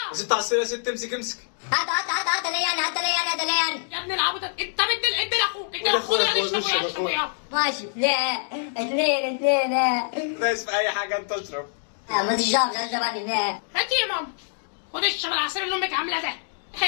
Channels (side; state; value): right; silent; digital silence